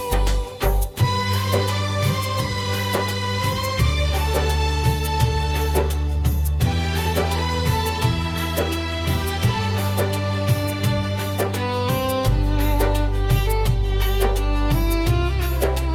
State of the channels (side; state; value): both; identical; correlation 1.00